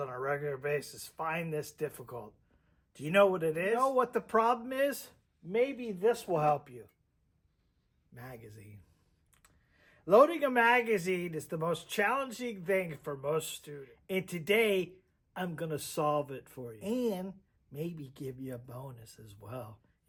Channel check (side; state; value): both; identical; correlation 1.00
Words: a regular basis find this difficult. Do you know what it is? You know what the problem is? Maybe this will help you. Magazine. Loading a magazine is the most challenging thing for most students. And today, I'm going to solve it for you. And maybe give you a bonus as well.